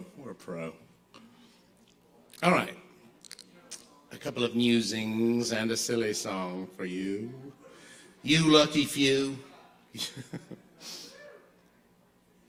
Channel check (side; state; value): both; identical; correlation 1.00